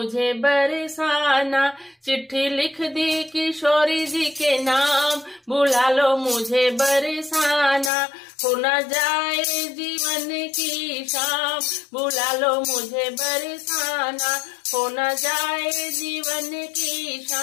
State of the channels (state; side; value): drops out; right; at 7.9 s